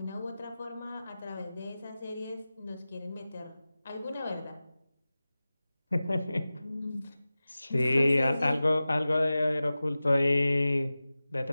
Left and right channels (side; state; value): both; inverted; correlation -0.96